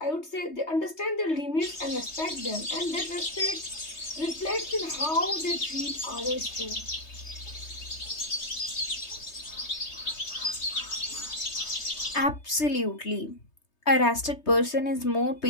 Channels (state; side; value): late; right; 3.2 ms